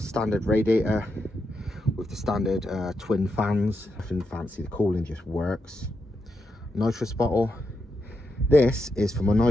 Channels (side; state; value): both; normal; correlation 0.85